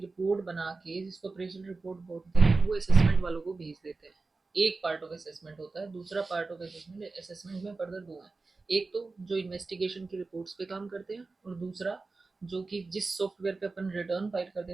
बना के जिसको अप्रेजल रिपोर्ट बोलते हैं वो असेसमेंट वालों को भेज देते हैं, एक पार्ट ऑफ असेसमेंट होता है। दूसरा पार्ट ऑफ असेसमेंट, असेसमेंट में फर्दर दो है, एक तो जो इन्वेस्टिगेशन की रिपोर्ट्स पे काम करते हैं, और दूसरा जो कि जिस सॉफ्टवेयर पे अपन रिटर्न फाइल करते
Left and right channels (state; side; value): quieter; left; 3.8 dB